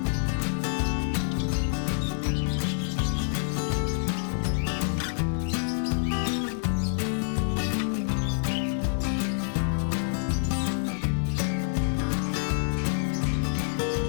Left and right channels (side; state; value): right; silent; 60 dB below the other